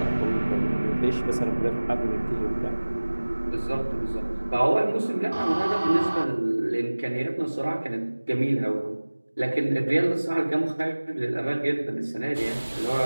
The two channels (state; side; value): inverted; both; correlation -1.00